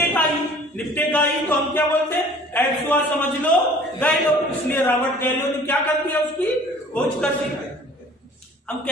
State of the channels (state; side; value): normal; both; correlation 0.50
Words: ही, निपटेगा ही, तो हम क्या बोलते हैं, एड्स हुआ, समझ लो, गए लो। इसलिए रॉबर्ट गैलो ने क्या कर दिया, उसकी खोज कर दी। हम